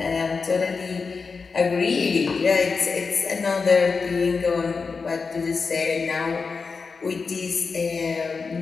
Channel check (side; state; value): right; quieter; 4.8 dB